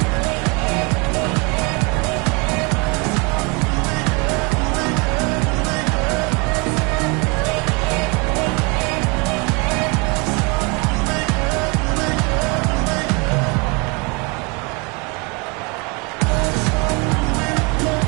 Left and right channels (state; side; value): quieter; left; 30.1 dB